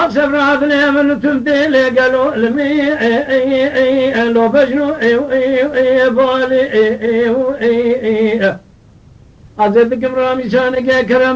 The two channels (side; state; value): both; identical; correlation 1.00